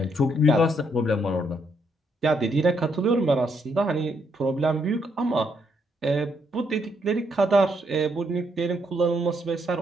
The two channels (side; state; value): both; normal; correlation 0.75